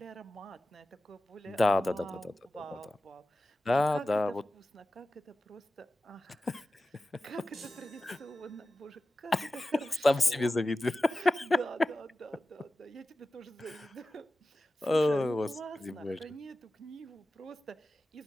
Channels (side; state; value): both; normal; correlation 0.94